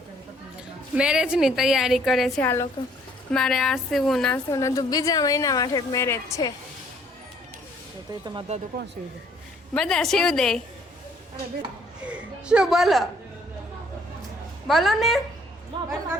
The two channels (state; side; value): normal; both; correlation 0.62